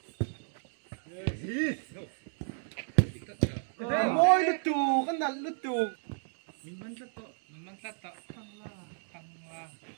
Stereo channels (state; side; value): silent; left; 56 dB below the other